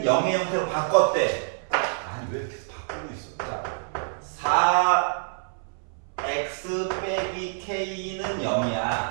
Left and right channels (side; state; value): left; silent; 61 dB below the other